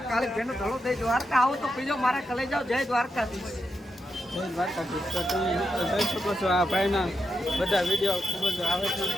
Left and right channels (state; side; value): normal; both; correlation 0.86